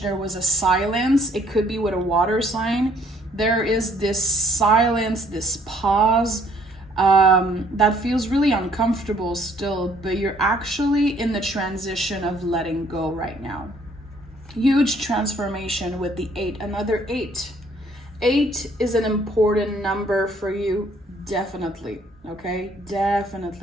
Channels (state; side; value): normal; both; correlation 0.63